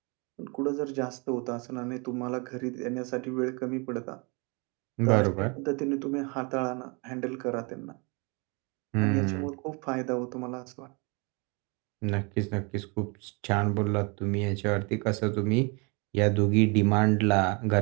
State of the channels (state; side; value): quieter; left; 31.3 dB